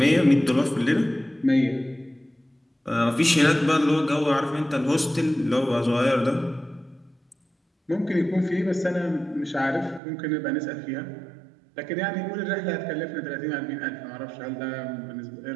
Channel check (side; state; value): left; drops out; at 10.0 s